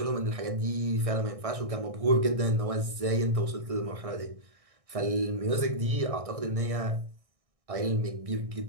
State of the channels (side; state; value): left; late; 1.6 ms